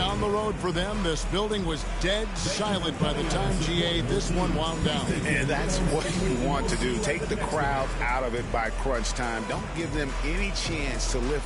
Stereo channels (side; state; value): both; identical; correlation 1.00